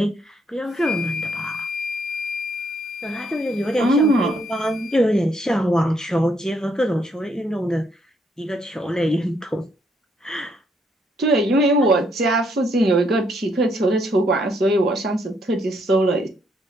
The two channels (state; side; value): normal; both; correlation 0.72